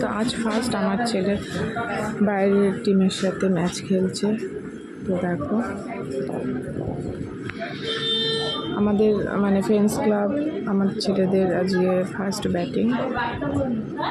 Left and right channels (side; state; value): both; identical; correlation 1.00